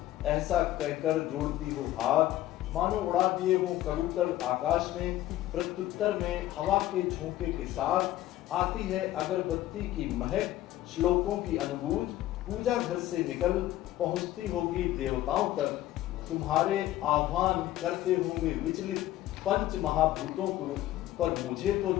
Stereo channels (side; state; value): right; quieter; 14.5 dB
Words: ऐसा कहकर जोड़ती हो हाथ, मानो उड़ा दिए हो कबूतर आकाश में, प्रत्युत्तर में हवा के झोंके के साथ आती है अगरबत्ती की महक, श्लोकों की अनुभूज, पूजा घर से निकल पहुंचती होगी देवताओं तक, तुम्हारे आह्वान करते होंगे विचलित पंच महाभूतों को, पर मुझे तो